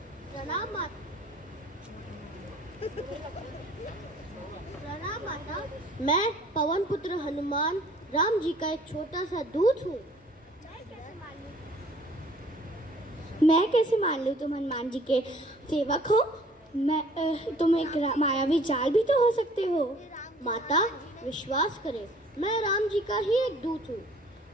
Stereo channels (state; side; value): normal; both; correlation 0.54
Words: प्रणाम माता। प्रणाम माता। मैं पवन पुत्र हनुमान राम जी का एक छोटा सा दूत हूँ। मैं कैसे मान लूँ तुम हनुमान जी के सेवक हो? तुम एक मायावी जाल भी तो हो सकते हो। माता, विश्वास करें, मैं राम जी का ही एक दूत हूँ।